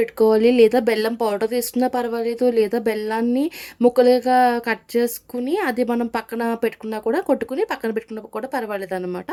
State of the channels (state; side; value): identical; both; correlation 1.00